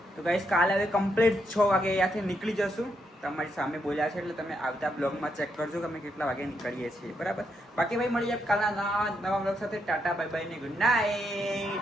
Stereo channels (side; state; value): both; normal; correlation 0.79